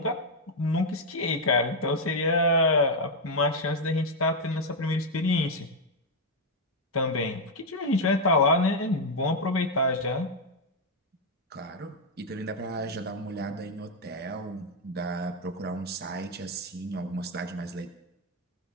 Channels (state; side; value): normal; both; correlation 0.02